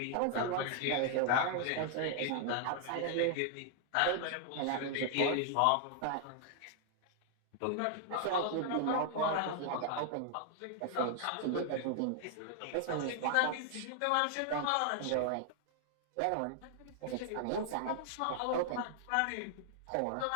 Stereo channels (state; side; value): different; both; correlation 0.00